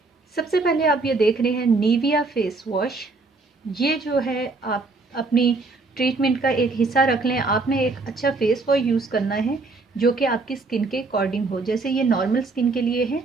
सबसे पहले आप ये देख रहे हैं निविया फेस वॉश। ये जो है आप अपनी ट्रीटमेंट का एक हिस्सा रख लें। आपने एक अच्छा फेस वॉश यूज़ करना है जो कि आपकी स्किन के अकॉर्डिंग हो। जैसे ये नॉर्मल स्किन के लिए है।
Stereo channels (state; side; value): quieter; left; 3.7 dB